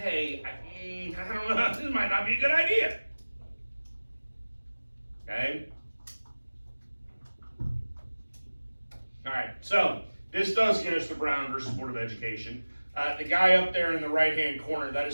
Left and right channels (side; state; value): both; inverted; correlation -1.00